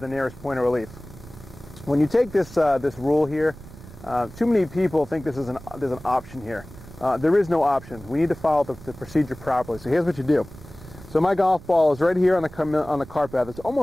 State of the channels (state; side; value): noise; right; rumble, 18 dB below the sound